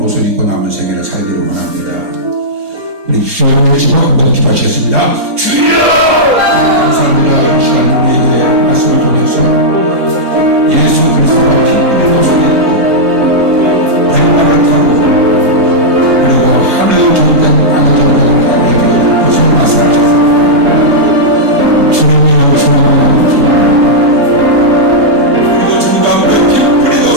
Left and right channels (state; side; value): normal; both; correlation -0.09